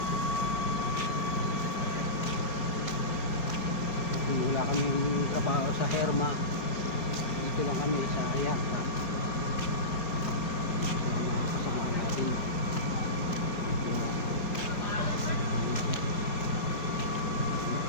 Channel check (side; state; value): right; late; 5.6 ms